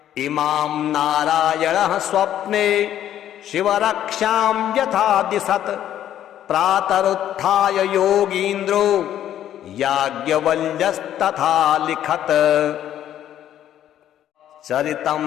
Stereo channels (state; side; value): quieter; right; 11.3 dB